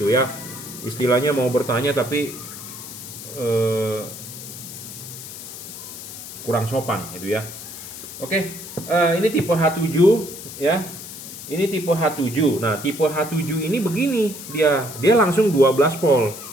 ya. Istilahnya mau bertanya tapi kurang sopan gitu ya. Oke, ini tipe H7 ya. Ini tipe H7. Nah, tipe H7 ini begini, dia langsung 12 volt.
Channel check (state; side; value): noise; left; hiss, 12 dB below the sound